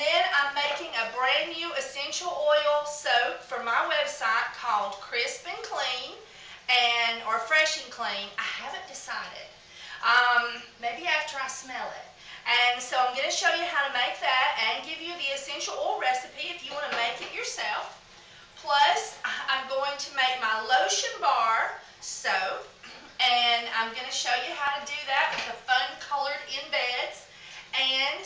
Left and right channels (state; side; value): identical; both; correlation 1.00